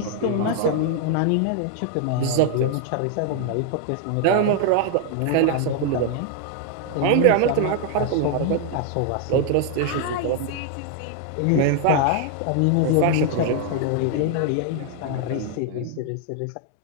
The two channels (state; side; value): different; both; correlation 0.00